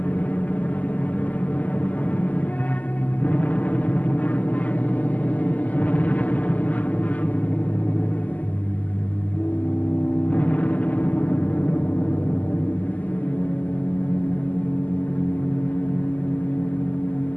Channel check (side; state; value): right; late; 0.077 ms